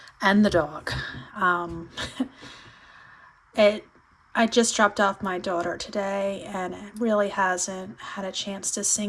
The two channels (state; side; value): identical; both; correlation 1.00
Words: and the dog. I just dropped off my daughter today, and it really hasn't had a chance to